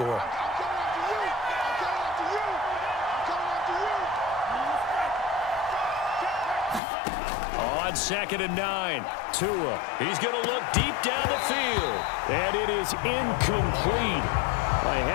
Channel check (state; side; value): drops out; right; at 6.8 s